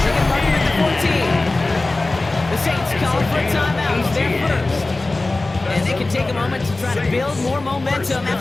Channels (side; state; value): right; quieter; 3.1 dB